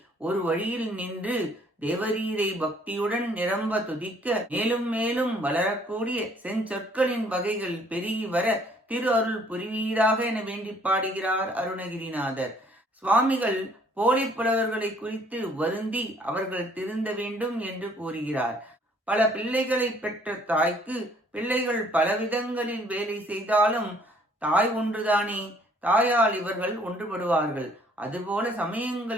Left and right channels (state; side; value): normal; both; correlation 0.60